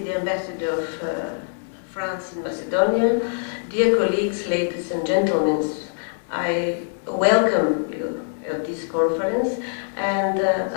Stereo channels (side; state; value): right; silent; digital silence